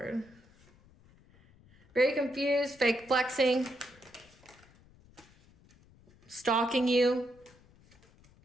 Very confused, fake flexing, stalking you,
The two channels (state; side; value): noise; left; rumble, 28 dB below the sound